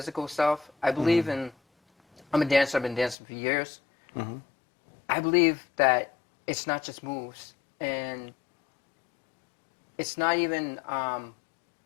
self. I believe I'm a dancer. I've been dancing for years. I believe that it's not just moves, and it's not even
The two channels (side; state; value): right; drops out; at 3.2 s